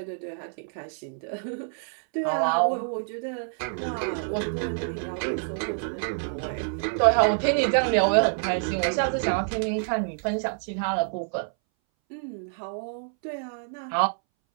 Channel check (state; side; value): silent; left; 60 dB below the other